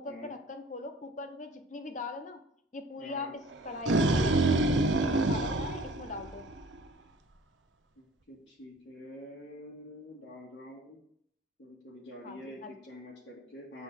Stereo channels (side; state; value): both; normal; correlation 0.49